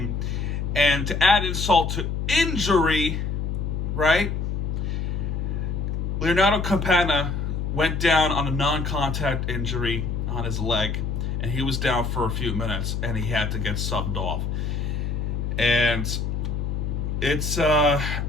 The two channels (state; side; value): noise; left; hum, 1 dB below the sound